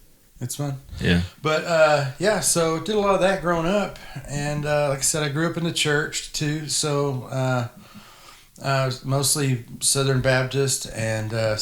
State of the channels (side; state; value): both; identical; correlation 1.00